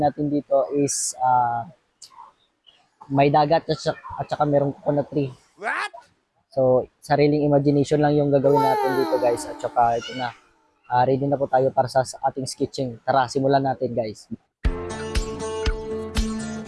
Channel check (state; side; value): identical; both; correlation 1.00